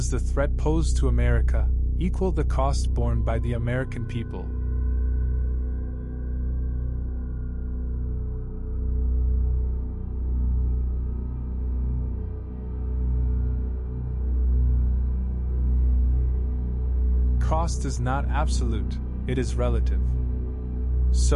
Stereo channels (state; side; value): identical; both; correlation 1.00